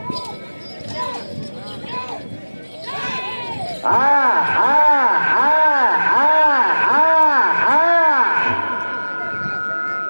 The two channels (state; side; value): inverted; both; correlation -1.00